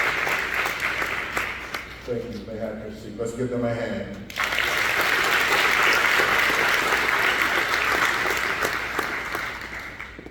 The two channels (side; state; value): both; identical; correlation 1.00